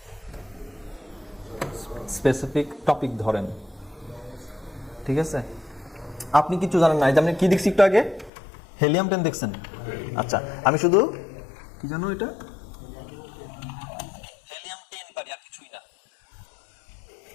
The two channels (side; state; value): right; drops out; at 8.3 s